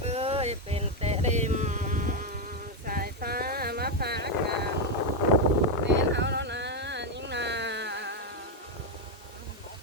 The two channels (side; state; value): both; normal; correlation 0.04